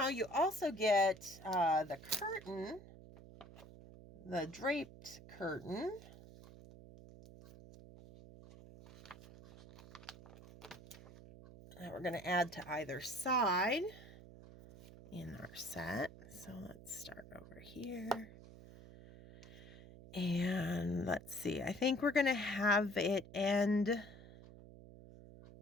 you also get the curtain, the draped curtain. that we're going to add to either side in our set. So let's start over here. And let's see, I think we're going to have it end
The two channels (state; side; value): noise; right; hum, 17 dB below the sound